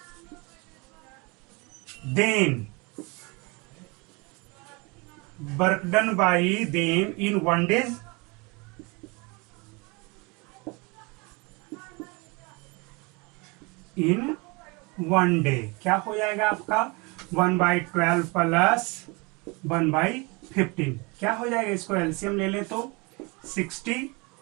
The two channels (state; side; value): quieter; left; 27.9 dB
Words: then work done by them in 1 day in 1 day क्या हो जाएगा आपका 1/12 प्लस 1/15 क्या हो जाएगा, इसको एलसीएम ले लें तो 60